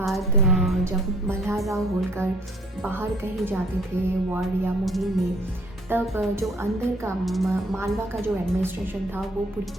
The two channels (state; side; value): normal; both; correlation 0.59